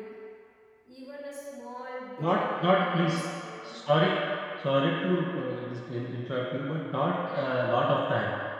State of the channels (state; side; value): identical; both; correlation 1.00